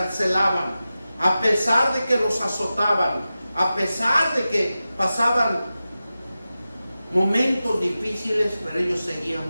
a pesar de que los azotaban, a pesar de que pasaban momentos difíciles, pero ellos seguían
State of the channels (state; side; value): inverted; both; correlation -0.94